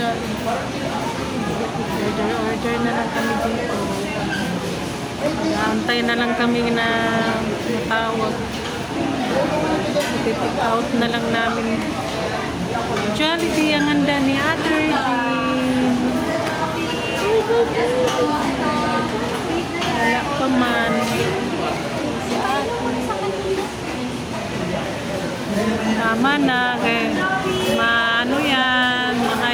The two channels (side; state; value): both; identical; correlation 1.00